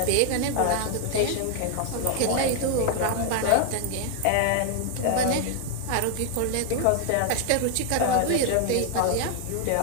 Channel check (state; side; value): different; both; correlation 0.00